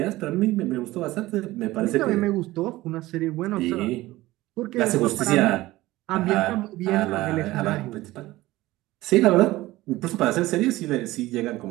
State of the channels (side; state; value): left; quieter; 17.9 dB